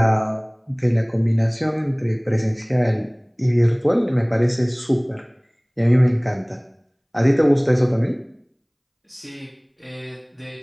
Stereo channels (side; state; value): both; identical; correlation 1.00